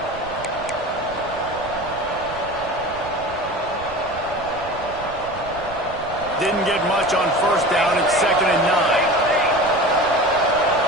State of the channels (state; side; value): noise; right; rumble, 16 dB below the sound